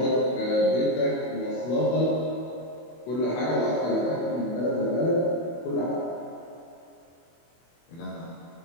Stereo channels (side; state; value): right; late; 24 ms